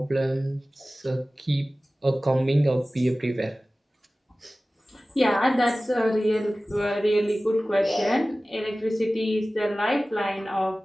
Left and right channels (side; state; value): both; normal; correlation 0.97